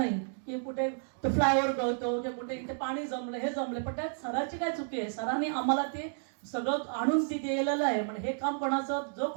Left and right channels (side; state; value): left; silent; digital silence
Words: की कुठे तो फ्लायओव्हर गळतो की कुठे इथे पाणी जमलं हे जमले, पण त्यात सराची काय चुकी आहे? सरांनी आम्हाला ते सगळं आणून ती दिलेलं आहे. म्हणजे हे काम कोणाचं, जो